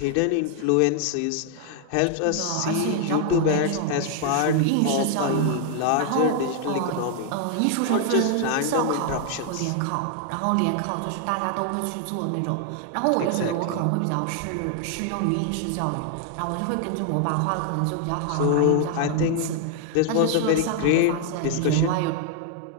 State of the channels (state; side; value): different; both; correlation 0.00